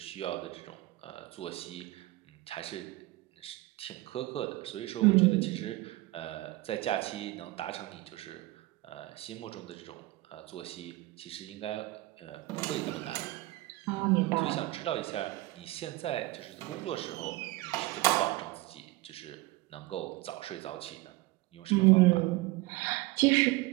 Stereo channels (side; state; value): left; quieter; 19.5 dB